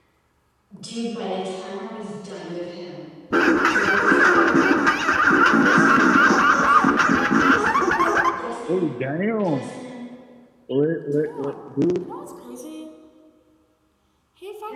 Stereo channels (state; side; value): identical; both; correlation 1.00